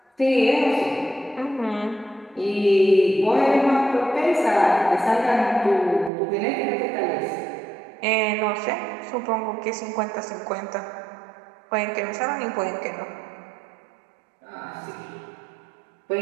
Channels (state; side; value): drops out; left; at 6.1 s